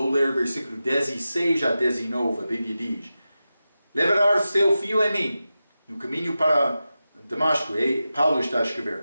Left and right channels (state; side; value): inverted; both; correlation -0.93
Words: ler versículo 16 a 19, a Bíblia diz: levará seu filho em mim, no caminho para Damasco, Paulo está a